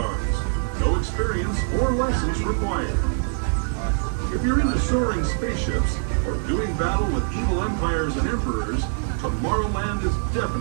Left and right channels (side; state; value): left; silent; digital silence